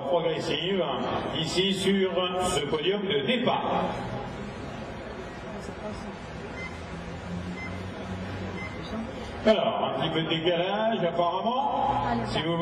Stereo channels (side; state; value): both; identical; correlation 1.00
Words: progressif ici sur ce podium de départ. Alors, un petit peu de décalage apparemment, si vous